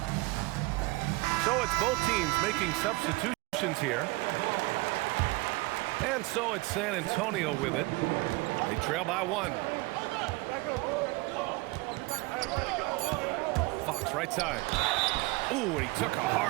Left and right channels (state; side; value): quieter; left; 23.3 dB